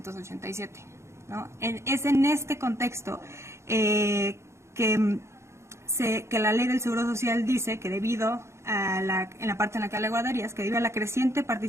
¿No? Es en este contexto que la ley del Seguro Social dice que debido a en la parte en la que habla de guarderías, que debido a la creciente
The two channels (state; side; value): late; left; 0.13 ms